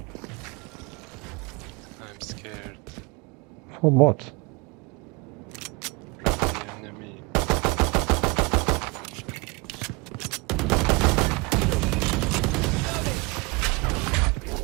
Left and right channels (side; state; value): left; quieter; 27.3 dB